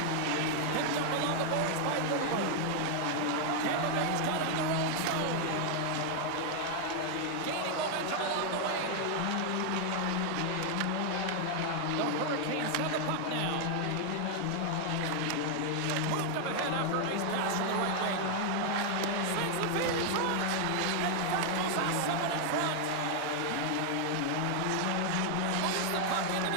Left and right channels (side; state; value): both; different; correlation 0.00